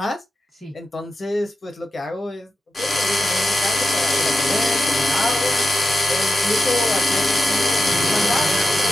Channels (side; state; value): both; normal; correlation 0.89